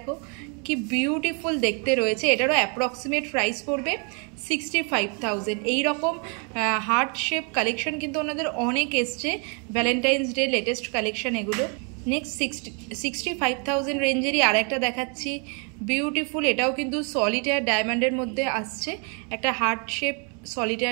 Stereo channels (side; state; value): left; quieter; 36.6 dB